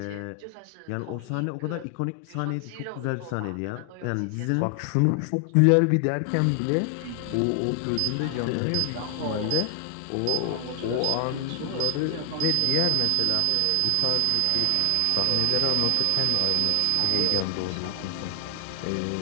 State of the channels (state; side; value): different; both; correlation 0.00